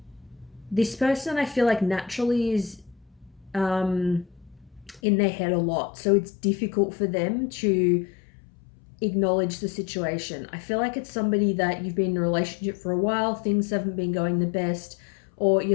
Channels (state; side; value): drops out; right; at 5.0 s